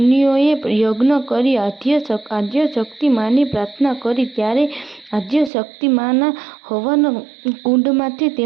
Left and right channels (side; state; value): left; drops out; at 5.5 s